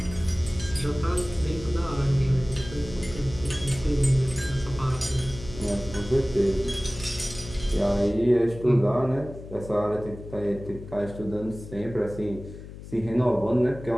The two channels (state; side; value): noise; left; hum, 13 dB below the sound